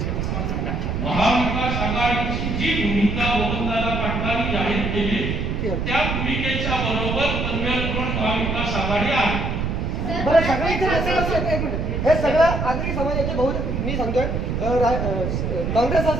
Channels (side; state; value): right; noise; rumble, 1 dB below the sound